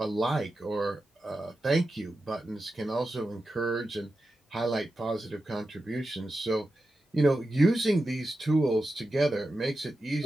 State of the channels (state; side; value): normal; both; correlation 0.91